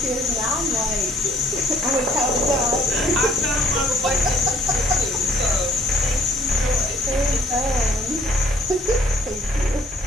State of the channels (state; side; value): normal; both; correlation 0.61